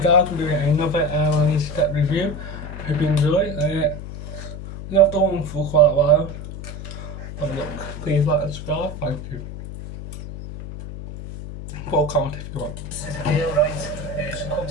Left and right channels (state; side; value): noise; left; hum, 9 dB below the sound